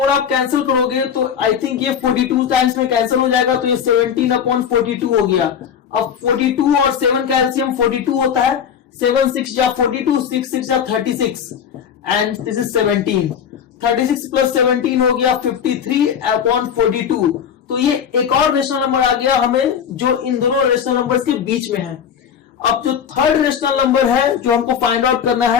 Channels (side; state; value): right; quieter; 8.0 dB